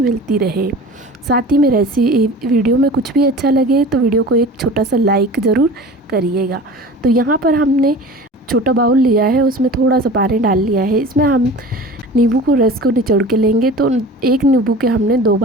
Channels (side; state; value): both; normal; correlation 0.38